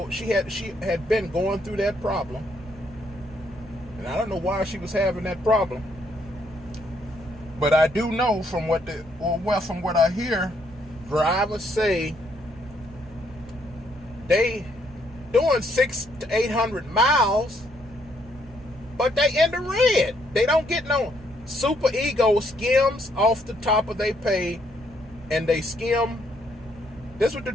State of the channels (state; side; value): normal; both; correlation 0.71